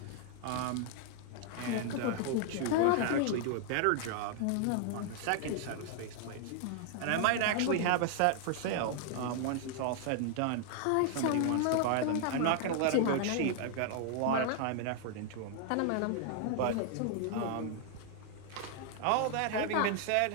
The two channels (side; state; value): both; different; correlation 0.00